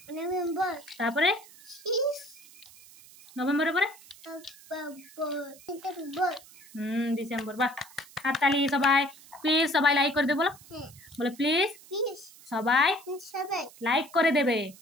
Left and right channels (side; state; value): right; noise; hiss, 22 dB below the sound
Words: নভেম্বর তারপরে শেষ নভেম্বরের পরে অক্টোবর ডিসেম্বর ডিসেম্বর বাহ হাততালি সবাই প্লিজ সবাই লাইক করে দেবে বলো হ্যাঁ বলো প্লিজ প্লিজ সবাই সবাই লাইক করে দেবে